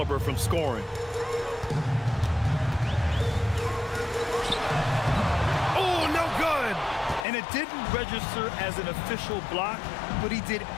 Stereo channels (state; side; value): drops out; right; at 7.2 s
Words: from scoring. Oh, no good. And it didn't register as an official block, but he did